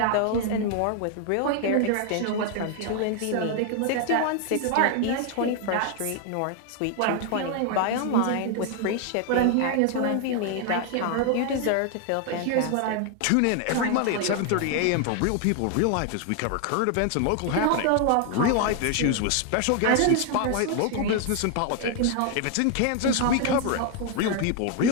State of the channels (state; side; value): different; both; correlation 0.00